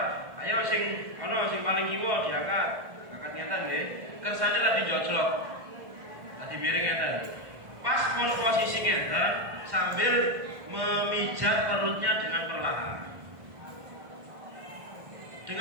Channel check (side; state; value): left; late; 1.6 ms